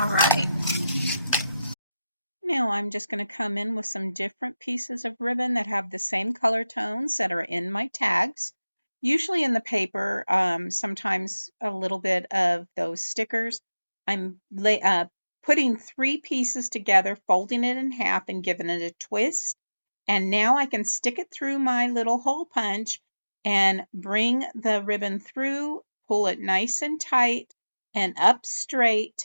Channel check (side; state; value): both; inverted; correlation -0.95